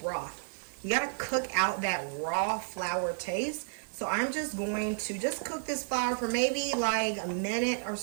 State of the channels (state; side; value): silent; left; digital silence